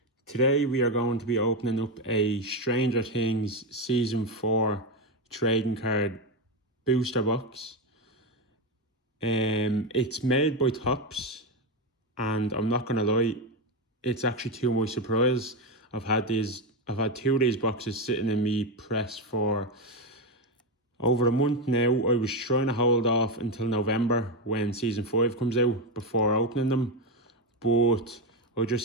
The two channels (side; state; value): both; normal; correlation 0.10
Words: Today we are going to be opening up a Stranger Things Season 4 trading card booster box. It's made by Topps, and I'm not gonna lie, it's actually to my surprise. I've had two of these boxes sitting in me press for over a month now. I was trying to hold off until November when Season 5 comes out before opening them. But I